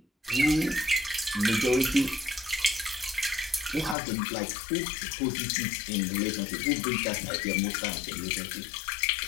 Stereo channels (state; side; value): drops out; right; at 4.0 s